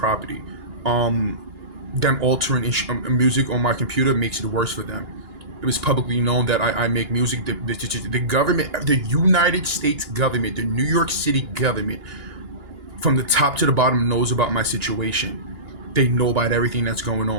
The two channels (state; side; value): late; left; 2.9 ms